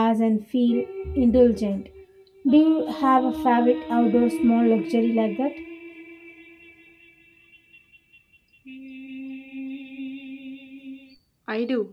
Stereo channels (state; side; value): identical; both; correlation 1.00